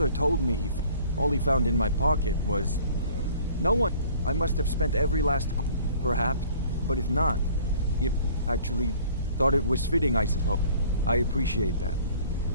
told me all he found in my pocket was... No one. I must have spent every last... Perhaps. But if not... If actually thought it was fitting, I suppose. I appreciate that.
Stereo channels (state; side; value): inverted; both; correlation -0.52